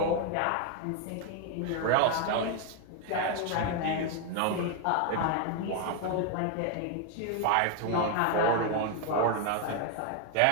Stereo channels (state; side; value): different; both; correlation 0.01